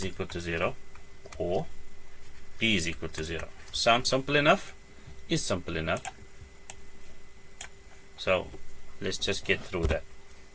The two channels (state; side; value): identical; both; correlation 1.00